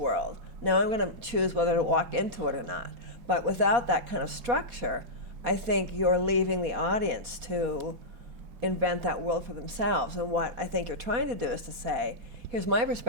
Now I'm going to choose whether to walk into it or not. But without that kind of structure, I think you're leaving the audience to invent that world for themselves. And what I think you're trying to do is to say, here's my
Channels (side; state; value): left; late; 4.2 ms